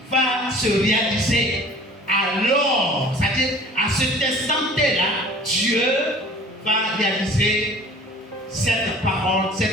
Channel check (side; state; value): both; normal; correlation 0.47